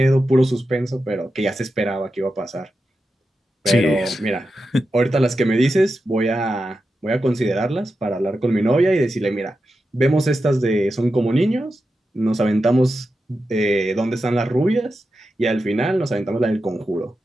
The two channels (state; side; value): normal; both; correlation 0.90